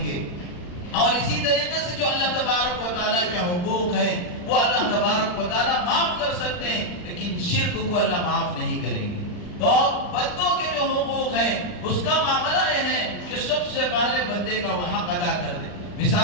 گے۔ اور اسی طریقے سے جو اللہ تبارک و تعالیٰ کے حقوق ہیں وہ اللہ تبارک و تعالیٰ معاف کر سکتے ہیں، لیکن شرک کو اللہ معاف نہیں کریں گے۔ اور بندوں کے جو حقوق ہیں اس کا معاملہ یہ ہے کہ سب سے پہلے بندے کا وہ حق ادا کر دے۔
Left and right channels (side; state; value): right; late; 39 ms